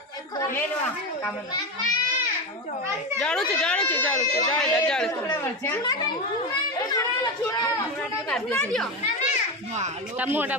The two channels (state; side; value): normal; both; correlation 0.17